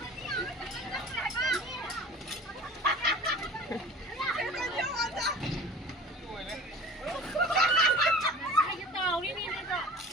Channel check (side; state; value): both; normal; correlation 0.40